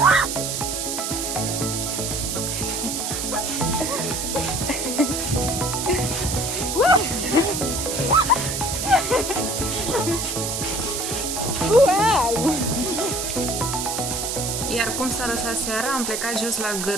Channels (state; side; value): noise; right; hiss, 2 dB below the sound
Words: Iar cum s-a lăsat seara, am plecat jos la